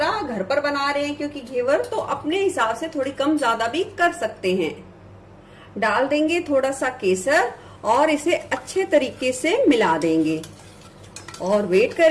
घर पर बना रहे हैं क्योंकि घेवर, तो अपने हिसाब से थोड़ी कम ज्यादा भी कर सकते हैं। डाल देंगे थोड़ा सा केसर और इसे अच्छे तरीके से मिला देंगे और वेट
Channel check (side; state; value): both; identical; correlation 1.00